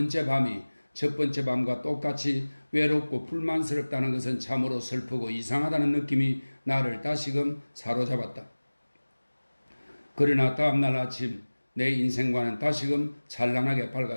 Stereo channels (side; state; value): both; inverted; correlation -1.00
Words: 밤이 첫 번째 밤과 똑같이 외롭고 불만스럽다는 것은 참으로 슬프고 이상하다는 느낌이 나를 다시금 사로잡았다. 그러나 다음날 아침 내 인생과는 다시금 찬란하게